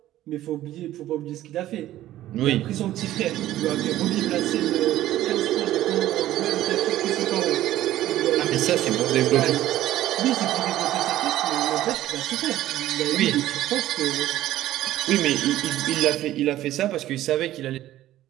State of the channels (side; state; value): left; quieter; 14.0 dB